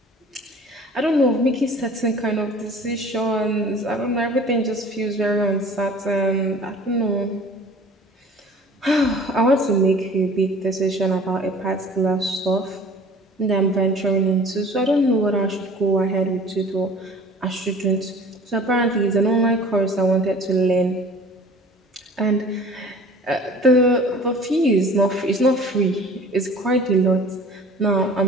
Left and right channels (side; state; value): both; normal; correlation 0.47